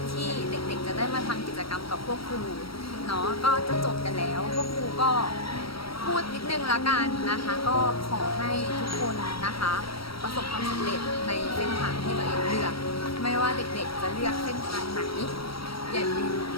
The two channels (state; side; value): late; right; 0.75 ms